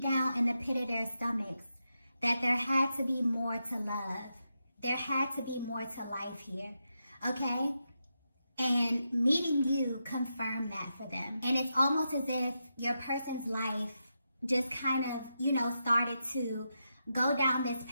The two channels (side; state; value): both; inverted; correlation -0.86